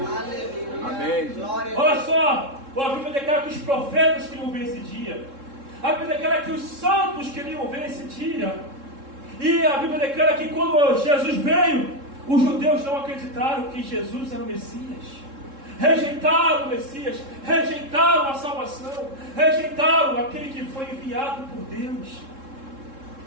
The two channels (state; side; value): late; left; 3.7 ms